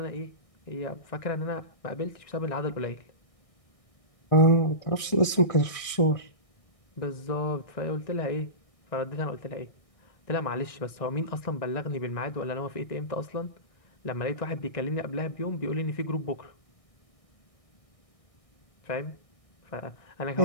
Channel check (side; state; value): right; late; 1.6 ms